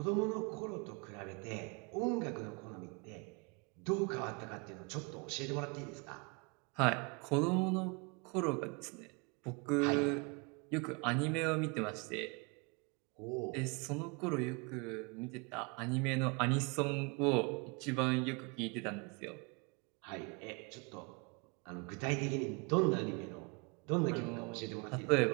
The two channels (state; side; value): quieter; left; 30.9 dB